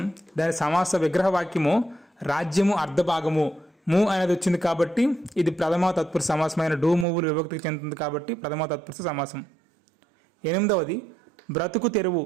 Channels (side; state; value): left; drops out; at 7.1 s